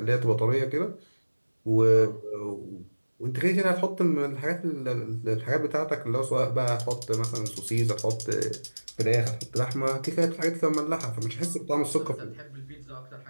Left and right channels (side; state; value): both; inverted; correlation -1.00